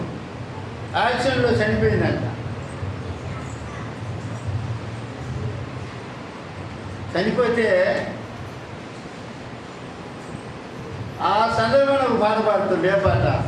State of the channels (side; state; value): both; identical; correlation 1.00